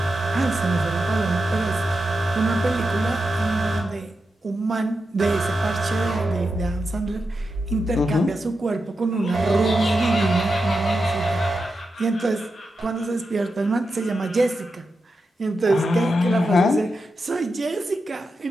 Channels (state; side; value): normal; both; correlation 0.88